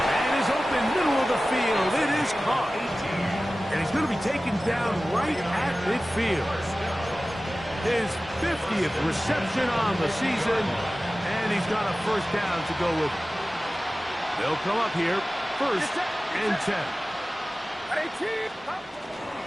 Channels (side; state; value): both; normal; correlation 0.96